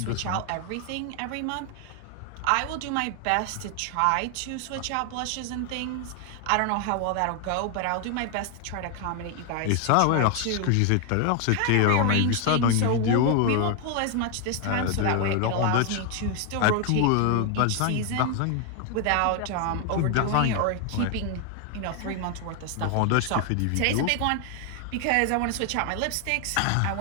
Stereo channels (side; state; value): both; different; correlation 0.00